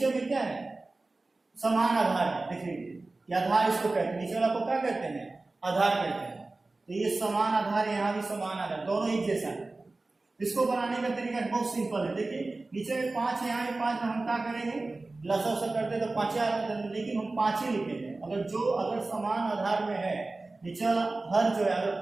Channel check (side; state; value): left; quieter; 3.2 dB